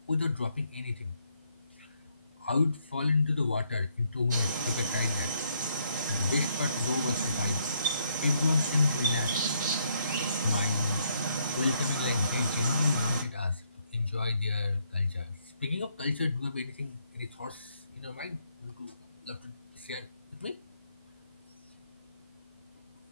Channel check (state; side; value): inverted; both; correlation -0.72